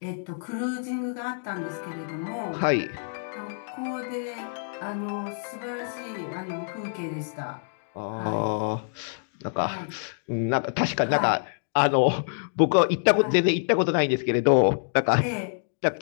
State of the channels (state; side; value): silent; right; digital silence